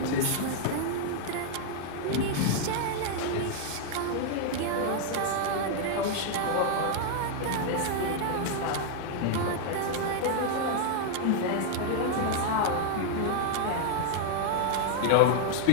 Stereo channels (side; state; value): both; different; correlation 0.00